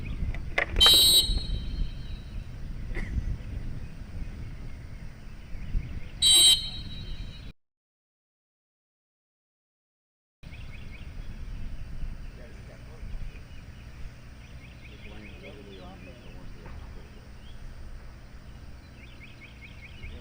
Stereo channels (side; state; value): both; identical; correlation 1.00